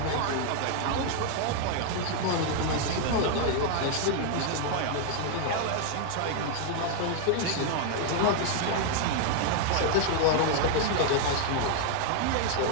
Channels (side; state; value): both; different; correlation 0.00